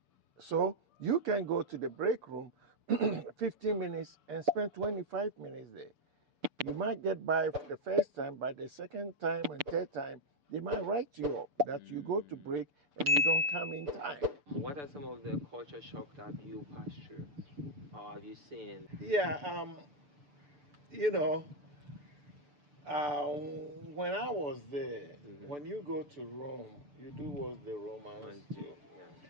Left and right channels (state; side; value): late; left; 6.8 ms